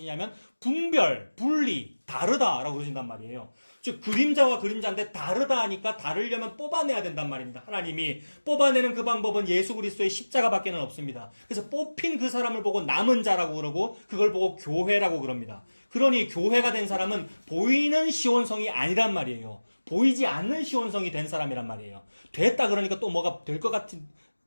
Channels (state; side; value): inverted; both; correlation -1.00